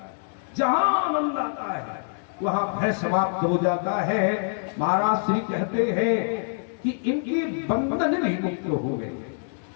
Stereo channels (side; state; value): right; silent; digital silence